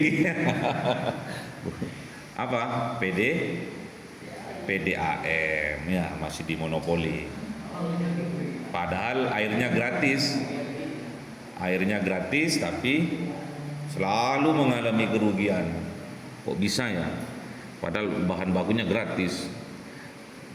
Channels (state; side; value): identical; both; correlation 1.00